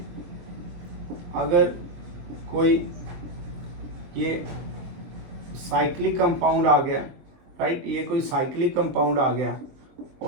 अगर कोई ये साइक्लिक कंपाउंड आ गया, राइट, ये कोई साइक्लिक कंपाउंड आ गया,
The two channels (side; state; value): left; late; 23 ms